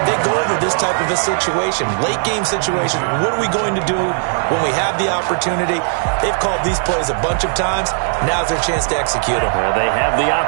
They go over this type of a situation, late game situation. What are we going to do when we have the opportunity? They've called these plays a bunch of times. Now's their chance to execute them. They have the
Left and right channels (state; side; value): silent; left; 59 dB below the other